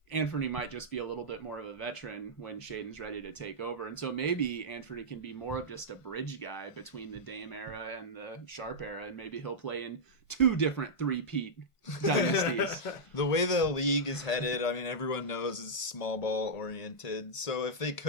Anfernee might just be a little bit more of a veteran when Shaedon's ready to take over. And so maybe Anfernee can be more of just a bridge guy between the Dame era and the Sharpe era, and maybe he'll play in 2 different three-peat dynasties. The way the league is headed, I mean, everyone knows is small ball oriented. So if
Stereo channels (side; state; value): right; late; 1.5 ms